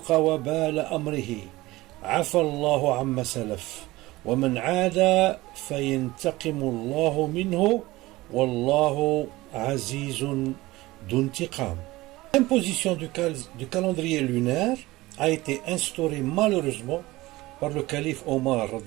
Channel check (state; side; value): quieter; left; 19.2 dB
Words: وبال أمره عفى الله عما سلف ومن عاد فينتقم الله منه والله عزيز d'intiqam. L'imposition du calendrier lunaire a été instaurée malheureusement par le calife Omar